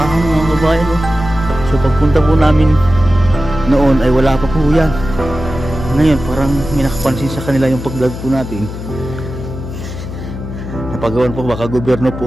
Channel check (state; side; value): noise; left; hum, 9 dB below the sound